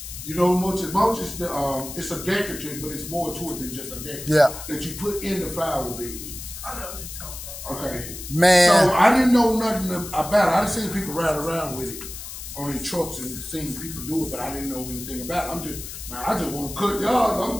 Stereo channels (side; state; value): left; noise; hiss, 10 dB below the sound